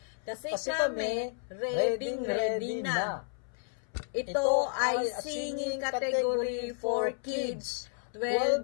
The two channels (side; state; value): right; silent; 57 dB below the other